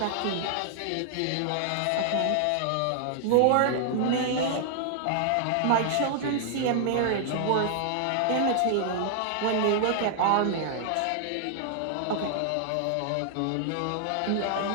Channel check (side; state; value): both; different; correlation -0.01